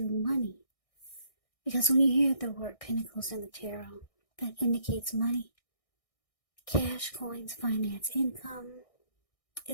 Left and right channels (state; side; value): late; right; 1.6 ms